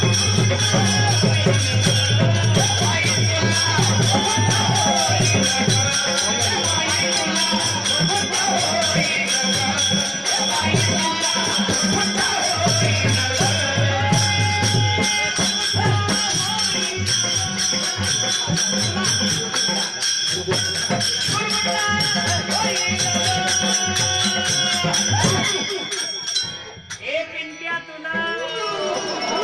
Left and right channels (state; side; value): identical; both; correlation 1.00